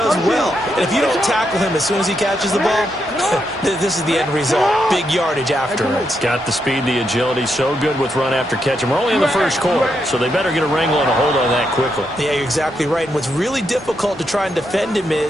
well. And if you don't tackle him as soon as he catches the ball, this is the end result. Big yardage afterwards. Got the speed, the agility, so good with run after catch. And we're only in the first quarter, so they better get a wrangle and a hold on that quickly. Yeah, you're exactly right. And what's really difficult to try and defend him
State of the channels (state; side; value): normal; both; correlation 0.81